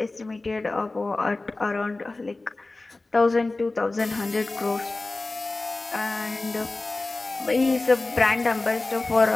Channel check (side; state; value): right; quieter; 3.2 dB